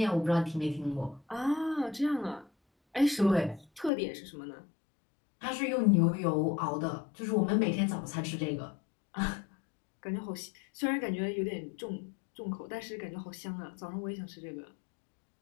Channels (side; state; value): right; drops out; at 3.9 s